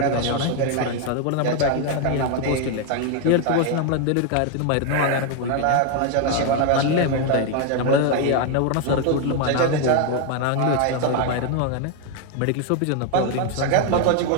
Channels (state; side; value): different; both; correlation 0.01